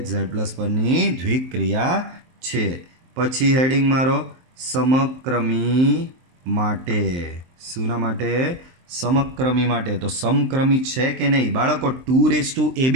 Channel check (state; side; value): late; left; 23 ms